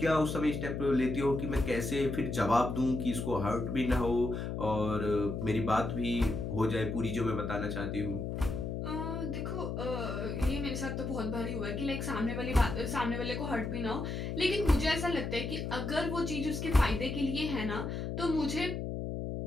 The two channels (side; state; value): left; noise; hum, 4 dB below the sound